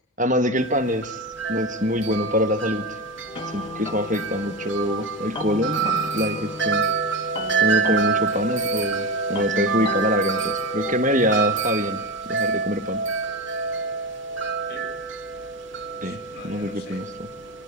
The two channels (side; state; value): both; normal; correlation 0.21